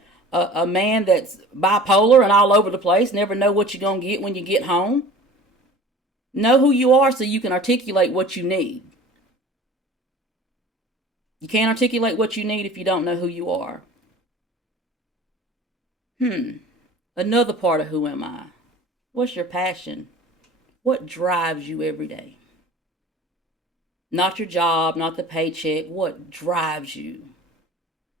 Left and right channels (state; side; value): normal; both; correlation 0.43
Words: a man that's bipolar and all over the place, never know what you're going to get when you get home. Know who you are so you can articulate what you need. You can't articulate what you need if you don't know who you are. Another part of who am I? What's your passion? What drives you every day? Not your job, not the paycheck. What drives you?